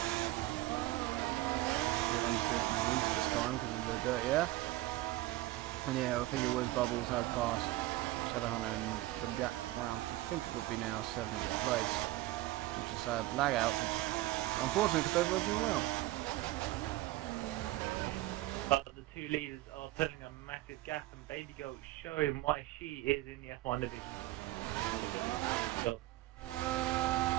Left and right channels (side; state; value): left; quieter; 17.6 dB